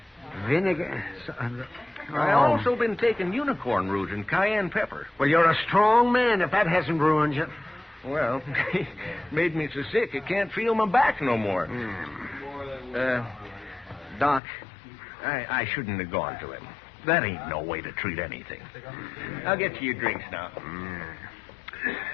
Vinegar? I've also been taking unicorn root and cayenne pepper. Well, you're a strong man if that hasn't ruined you. Well, made me so sick I can't feel my back no more. Doc, I shouldn't have gone to him. That ain't no way to treat anything. I'll get you your drinks now.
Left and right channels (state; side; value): drops out; right; at 14.4 s